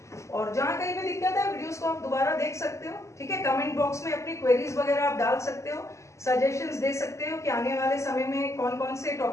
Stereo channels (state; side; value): late; right; 0.14 ms